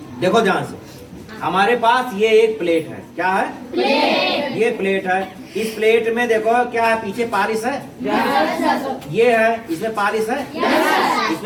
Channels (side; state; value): both; identical; correlation 1.00